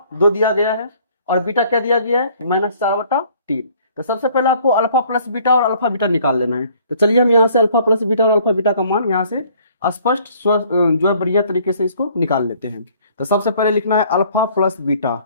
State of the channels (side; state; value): both; inverted; correlation -0.58